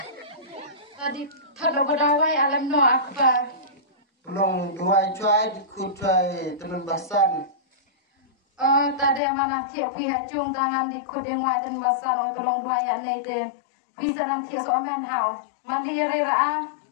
Tadi thado badawai alam no apa. Long dua cuai ku cuai temen basan. Tadi mana tiap pihak cung tangan di kudeng wajan basan tolong dua ya nei te. Bisa nanti soaman hau. Mandiri ra.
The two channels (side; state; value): right; drops out; at 9.2 s